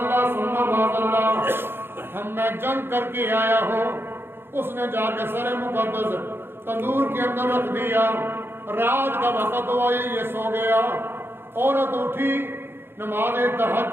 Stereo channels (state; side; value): late; left; 0.11 ms